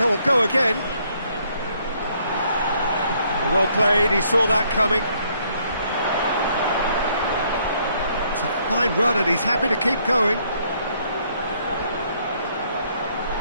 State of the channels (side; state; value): both; inverted; correlation -0.68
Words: go again. Well played, he saw that coming. It's a fine run and he's happy to keep going.